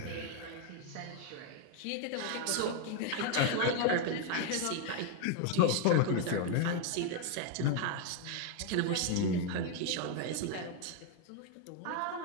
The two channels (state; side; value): different; both; correlation 0.01